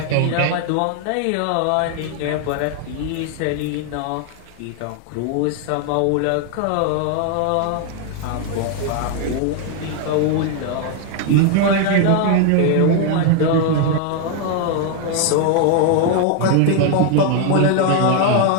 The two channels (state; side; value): different; both; correlation 0.00